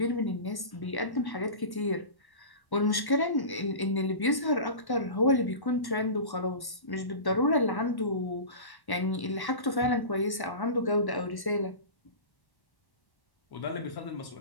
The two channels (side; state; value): right; late; 1.1 ms